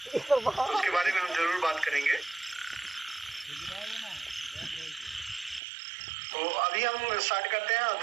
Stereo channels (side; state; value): left; drops out; at 5.6 s